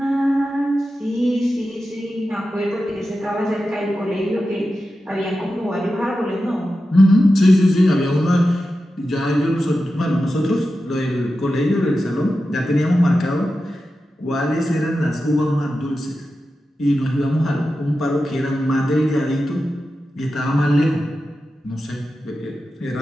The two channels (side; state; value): both; normal; correlation 0.91